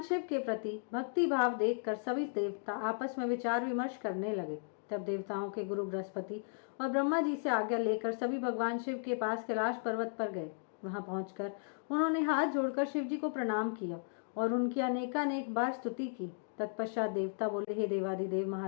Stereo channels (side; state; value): right; silent; digital silence